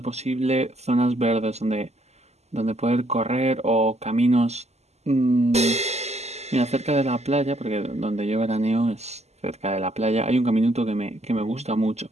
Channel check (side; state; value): left; late; 0.32 ms